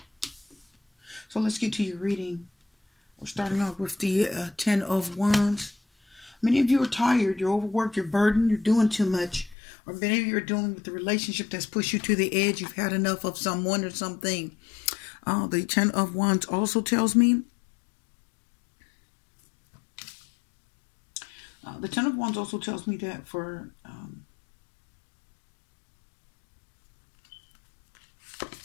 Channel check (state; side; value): drops out; right; at 9.6 s